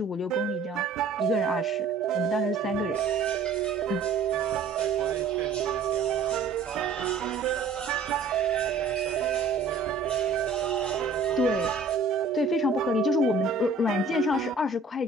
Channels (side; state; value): left; quieter; 4.1 dB